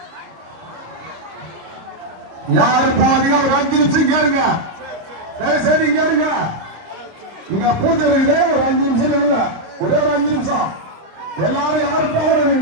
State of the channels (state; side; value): late; left; 26 ms